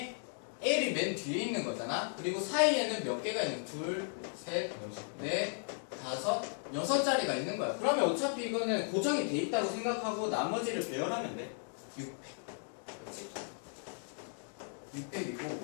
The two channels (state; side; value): silent; right; 54 dB below the other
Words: l이 맨 뒤에 있는 거잖아. 그리고 사이에는 몇 개가 있는? 둘, 셋, 넷, 다섯, 6자리가 있는 거야. 그러면 어차피 이거는 고정이 돼 있다고 생각하고 나머지를 배열하면 돼. 600. 그렇지? 600이고